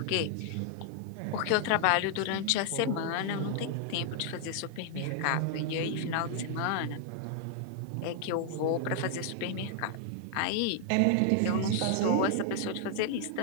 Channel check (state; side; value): different; both; correlation 0.00